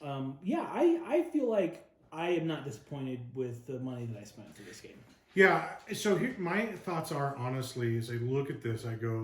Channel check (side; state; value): both; identical; correlation 1.00